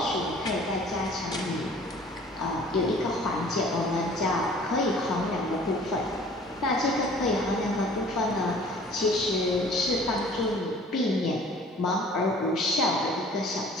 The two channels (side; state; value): both; normal; correlation 0.50